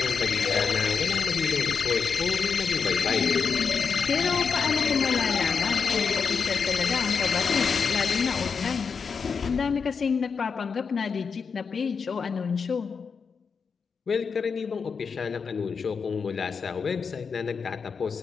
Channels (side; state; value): right; quieter; 5.7 dB